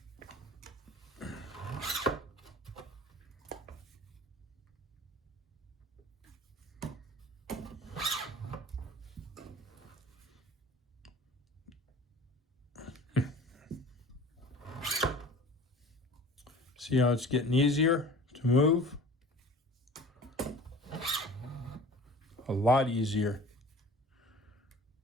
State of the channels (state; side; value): normal; both; correlation 0.43